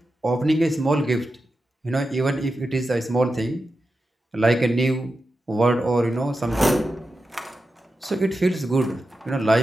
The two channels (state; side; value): normal; both; correlation 0.90